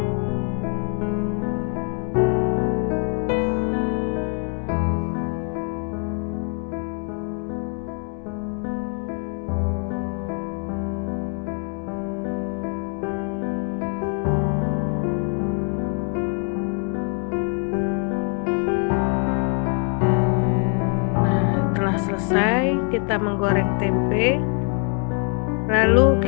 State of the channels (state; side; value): quieter; right; 38.8 dB